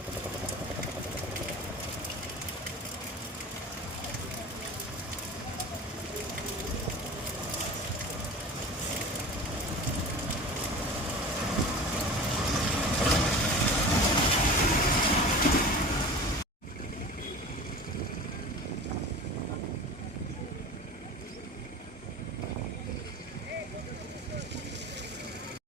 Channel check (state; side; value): normal; both; correlation 0.36